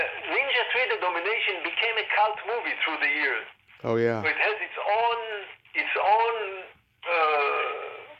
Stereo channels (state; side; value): identical; both; correlation 1.00